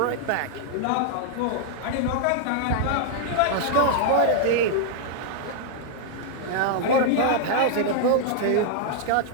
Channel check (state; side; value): different; both; correlation -0.01